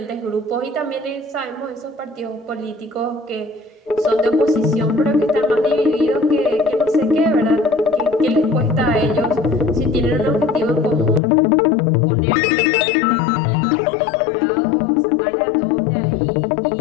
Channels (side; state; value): right; drops out; at 11.2 s